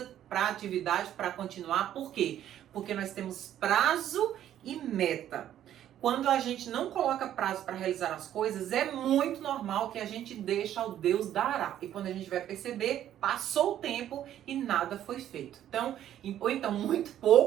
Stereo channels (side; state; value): left; quieter; 11.3 dB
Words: para a atividade para continuar. Por quê? Porque nós temos prazo e meta. Quando a gente não coloca prazo para realizar as coisas, é muito normal que a gente deixe ao Deus dará. E quando a gente vai perceber, passou o tempo e nada foi feito. Ou então muito